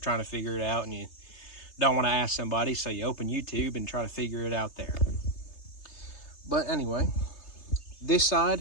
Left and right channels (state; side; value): late; right; 3.3 ms